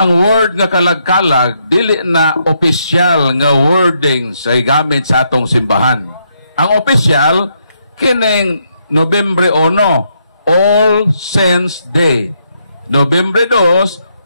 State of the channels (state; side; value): inverted; both; correlation -0.77